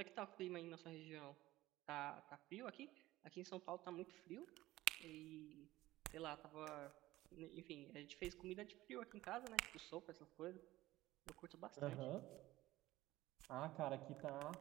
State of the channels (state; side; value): quieter; left; 16.8 dB